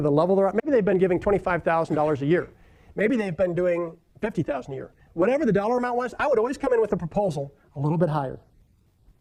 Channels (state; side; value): identical; both; correlation 1.00